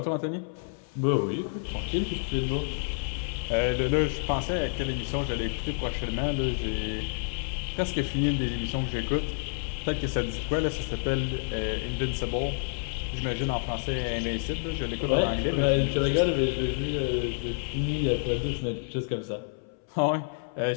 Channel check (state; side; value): silent; right; 59 dB below the other